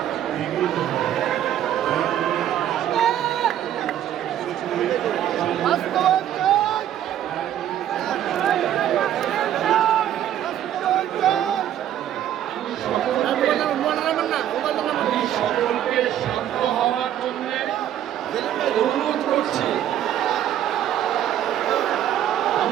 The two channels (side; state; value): left; quieter; 11.2 dB